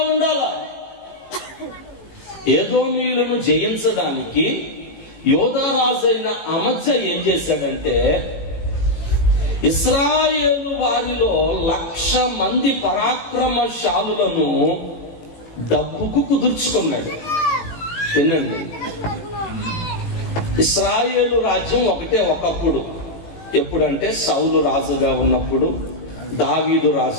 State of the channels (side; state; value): right; late; 18 ms